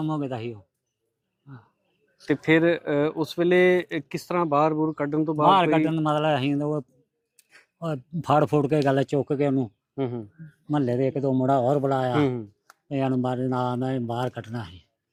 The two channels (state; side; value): identical; both; correlation 1.00